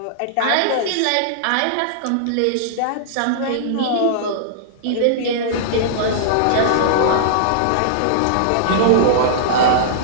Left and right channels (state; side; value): different; both; correlation -0.02